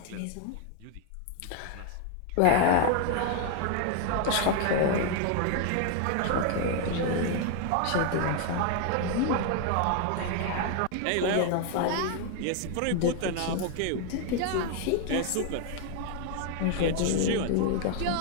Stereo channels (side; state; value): both; different; correlation 0.01